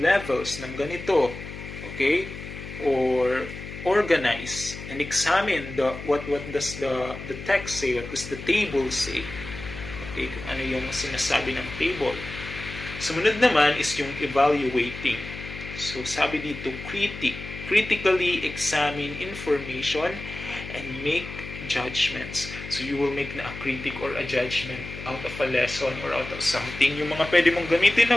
ng ganito. Okay? Or organize and examine what does the text say, what does the table say. Okay, kung ano yung sinasabi ng table. Sumunod naman is yung evaluating. So, sabi dito, critically examine information and make judgments. So, you will make na a critic or a judgment out of a lesson or out of something. Yung mga pwede mong gamitin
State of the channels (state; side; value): noise; left; hum, 11 dB below the sound